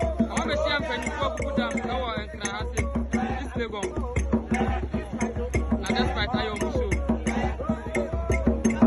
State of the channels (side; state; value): both; identical; correlation 1.00